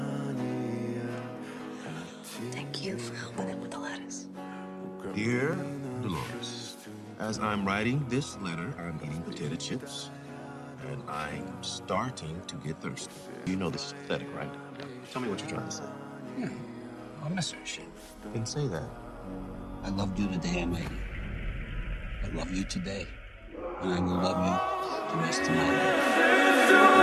Thank you for helping him with the lettuce. Dear Dolores, as I'm writing this letter, I'm eating potato chips, and I'm starting to get thirsty. You know this is pathetic, right? Tell me what you're trying to say. I miss her shit. Then say that. I loved you the day I met you. I love you today. And I will love you the rest of my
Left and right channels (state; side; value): identical; both; correlation 1.00